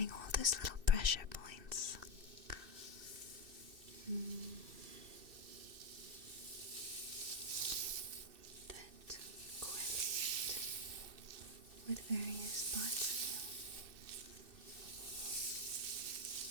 all those little pressure points. That correlate with various parts of you.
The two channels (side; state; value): left; late; 2.6 ms